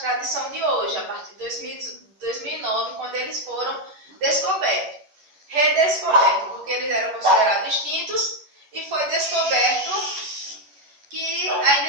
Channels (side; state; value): left; late; 11 ms